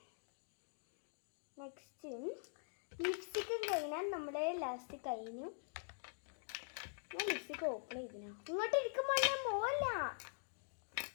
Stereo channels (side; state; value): right; silent; digital silence